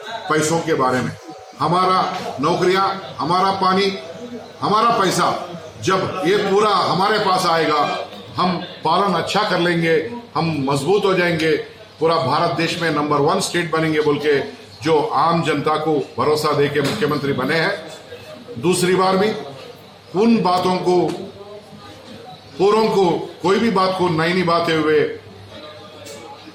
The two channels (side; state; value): both; identical; correlation 1.00